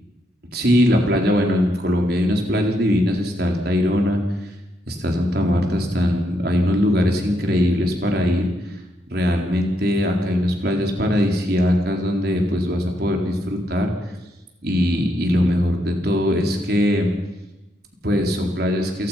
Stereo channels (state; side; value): normal; both; correlation 0.78